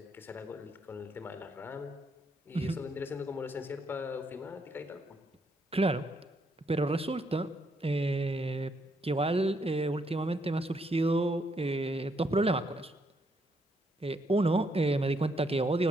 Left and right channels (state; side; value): normal; both; correlation 0.74